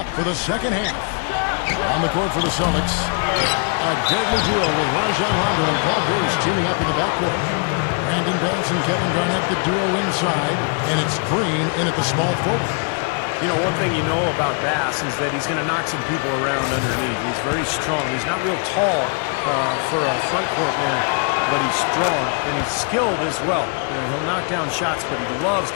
for the second half. On the court for the Celtics, a deadly duo with Rajon Rondo and Paul Pierce teaming up in the backcourt. Brandon Bass and Kevin Garnett, the duo inside, and it's Green in at the small forward. You know, one thing you know about Bass is that he's going to knock some people around underneath. He's very strong. He's not real tall for a front court man, but he's strong and he's skilled as well. You know, he'll knock down shots, but he loves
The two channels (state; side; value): quieter; right; 39.4 dB